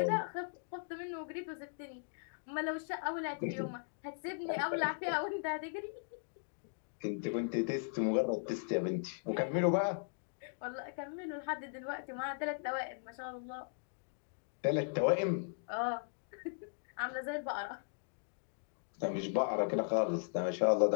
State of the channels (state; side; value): silent; right; digital silence